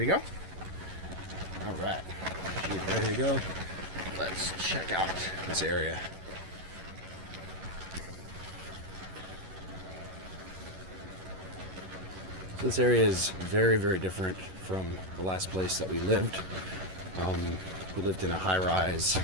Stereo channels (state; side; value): late; left; 11 ms